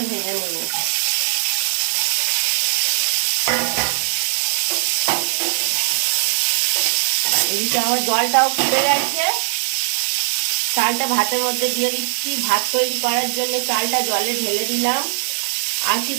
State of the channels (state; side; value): silent; left; digital silence